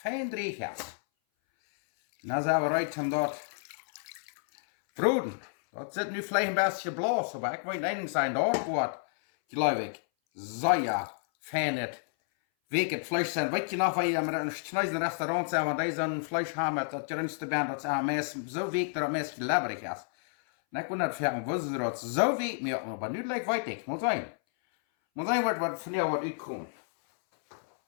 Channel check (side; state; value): right; silent; 57 dB below the other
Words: dreig is. Dan zijn we uit om dat bruden. Dat zit nu vielleicht een beetje blazen, maar ik weet één zijn, dat wordt, geloof ik, zeer fijn het week het vlees zijn. Weet je nog, waar je met een snijden restaurant zijn, want die zo'n vlees hebben met dat jongste bent, dat ze meest zo week dat het meest leberig is. En ik wil net vragen, wisten ze dat zo week meer, maar nu lijkt weet ik, moet zijn. Moet zijn wat van jou wat uitkomt.